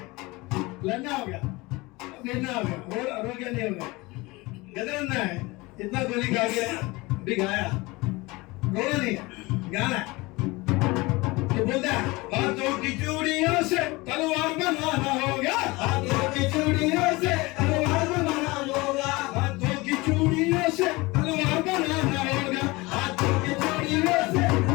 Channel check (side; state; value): right; quieter; 22.9 dB